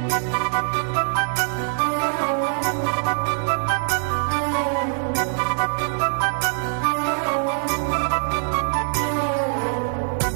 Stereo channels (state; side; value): silent; left; 61 dB below the other